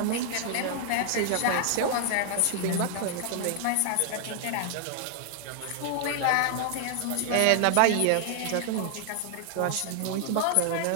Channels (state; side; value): different; both; correlation 0.00